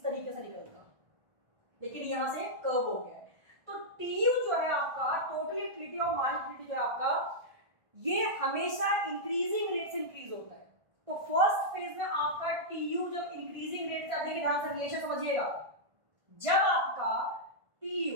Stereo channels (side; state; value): left; late; 1.5 ms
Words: तरीके से निकलता, लेकिन यहां से कर्व हो गया है। तो TU जो है आपका, टोटल यूटिलिटी और मार्जिनल यूटिलिटी जो है आपका, ये हमेशा इंक्रीजिंग रेट से इंक्रीज होता है। तो फर्स्ट फेज में आपका TU जब इंक्रीजिंग रेट से, देखिए ध्यान से रिलेशन समझिएगा, जब आपका